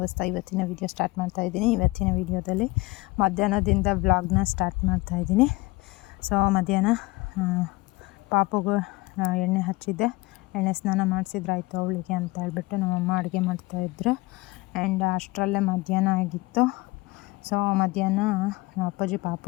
ಇವತ್ತಿನ ವೀಡಿಯೋ ಸ್ಟಾರ್ಟ್ ಮಾಡ್ತಾ ಇದ್ದೀನಿ. ಇವತ್ತಿನ ವೀಡಿಯೋದಲ್ಲಿ ಮಧ್ಯಾಹ್ನದಿಂದ ವ್ಲಾಗ್ನ ಸ್ಟಾರ್ಟ್ ಮಾಡ್ತಾ ಇದ್ದೀನಿ. ಸೊ ಮಧ್ಯಾಹ್ನ ಪಾಪುಗೂ ಎಣ್ಣೆ ಹಚ್ಚಿದ್ದೆ, ಎಣ್ಣೆ ಸ್ನಾನ ಮಾಡಿಸಿದ್ರಾಯ್ತು ಅವಳಿಗೆ ಅಂತ ಹೇಳ್ಬಿಟ್ಟು ನಮ್ಮಮ್ಮ ಅಡುಗೆ ಮಾಡ್ತಾಯಿದ್ರು. ಆ್ಯಂಡ್ ಅಷ್ಟರಲ್ಲೇ ಮಧ್ಯಾಹ್ನ ಆಗಿತ್ತು. ಸೊ ಮಧ್ಯಾಹ್ನ ಅಪ್ಪಾಜಿ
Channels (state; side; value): quieter; right; 22.4 dB